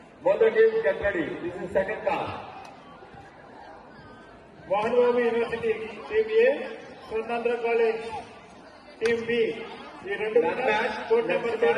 Both the teams get ready. This is second call. Mohan Babu university team A Swarnandhra college team B ఈ రెండు That match court number 2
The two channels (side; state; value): both; identical; correlation 1.00